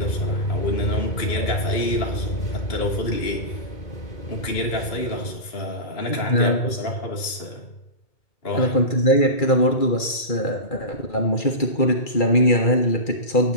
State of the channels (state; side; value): late; right; 2.4 ms